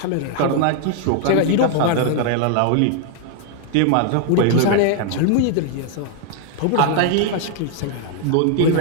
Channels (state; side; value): different; both; correlation 0.00